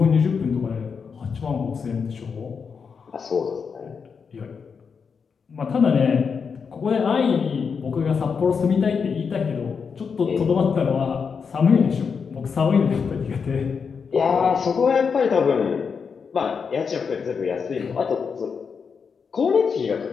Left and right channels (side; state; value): right; quieter; 5.9 dB